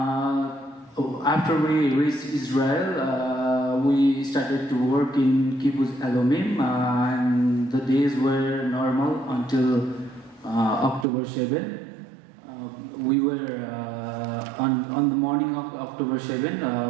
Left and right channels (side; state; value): left; drops out; at 11.1 s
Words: After we reached Israel, we started to work in Kibbutz Alomim, and the days were normal until October 7. We were on the morning of October 7.